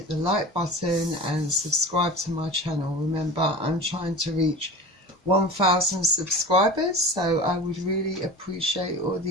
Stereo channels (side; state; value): both; normal; correlation 0.34